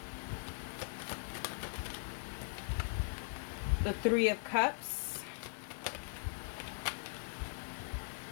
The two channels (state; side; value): silent; right; digital silence